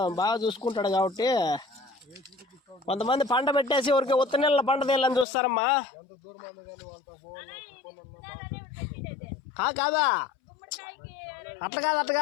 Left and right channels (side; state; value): right; drops out; at 5.2 s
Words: బాగా చూసుకుంటాడు కాబట్టి. కొంతమంది పంట పెట్టేసి ఊరికి ఉత్త నెలల పంట తీయాలని చూస్తారమ్మా. కాదా, అట్లా